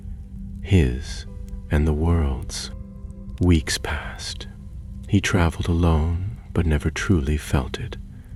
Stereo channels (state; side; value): identical; both; correlation 1.00